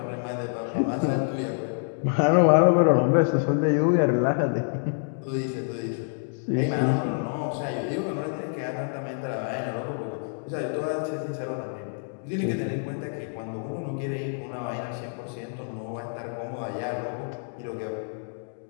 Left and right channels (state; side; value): silent; right; digital silence